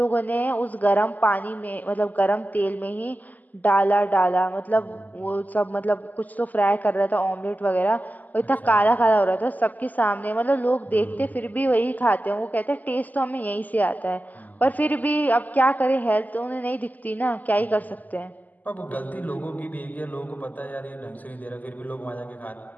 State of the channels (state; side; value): late; right; 0.081 ms